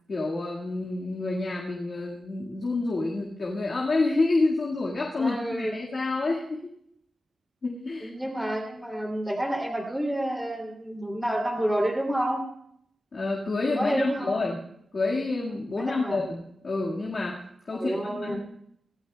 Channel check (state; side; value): normal; both; correlation 0.94